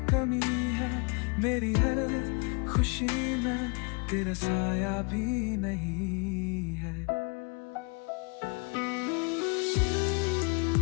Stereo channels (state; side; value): quieter; right; 33.4 dB